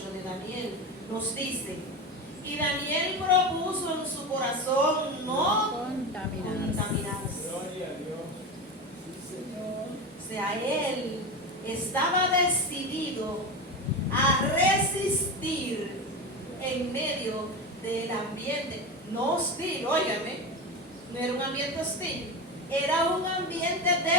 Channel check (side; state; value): both; normal; correlation 0.22